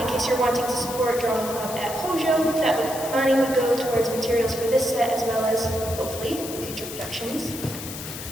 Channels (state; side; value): noise; left; hiss, 9 dB below the sound